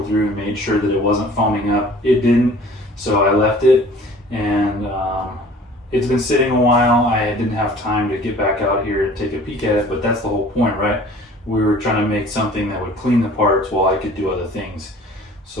through and made sure that it wasn't foaming up. It didn't, so I left it, and it's been sitting a while. I didn't have time to get back out here and take a peek at it, but that's the whole point, right? We were trying to make something that would clean the parts while I could do other things.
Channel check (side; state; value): both; normal; correlation 0.49